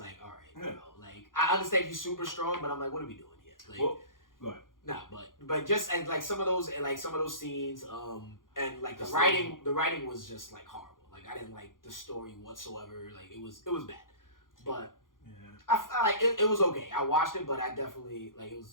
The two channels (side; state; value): right; late; 0.90 ms